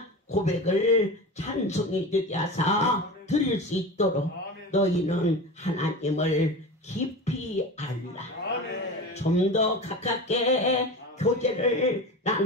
고백을 찬송이 되게 하사 드릴 수 있도록 너희는 하나님을 깊이 알라. 좀 더 가깝게 교제를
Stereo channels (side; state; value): both; normal; correlation 0.29